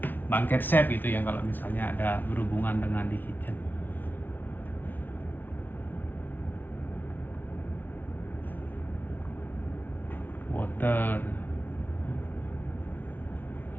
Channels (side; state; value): right; late; 0.090 ms